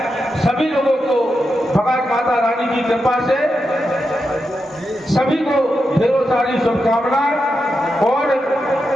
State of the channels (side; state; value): both; normal; correlation 0.87